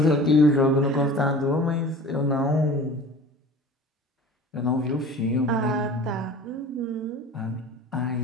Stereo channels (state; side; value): normal; both; correlation 0.41